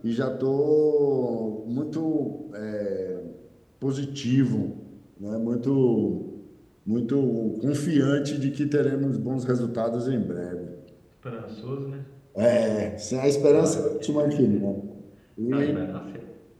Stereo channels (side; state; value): both; identical; correlation 1.00